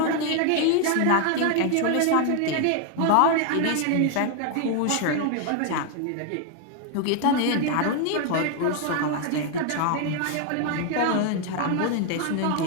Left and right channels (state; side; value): different; both; correlation 0.00